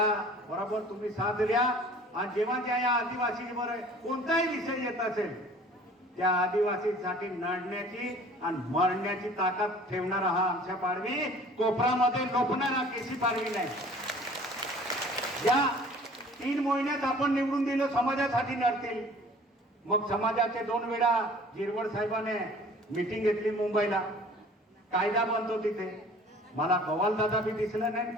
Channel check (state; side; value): normal; both; correlation 0.49